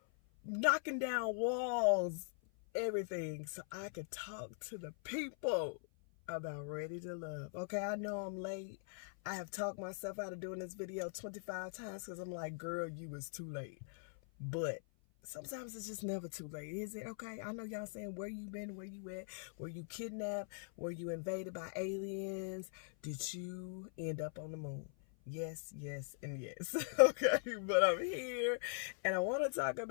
knocking down walls, everything, so I could talk to the people about Ready to Love. Okay, I know I'm late. I have talked myself out of doing this video 25 times because I'm like, girl, you was too late. But sometimes it's just never too late, is it? Okay, I know y'all saying, where you been, where you at, were you kidnapped, were you invaded by aliens, did you end up on the moon? Yes, and yes. Okay, but I'm here and I want to talk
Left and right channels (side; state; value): right; silent; 50 dB below the other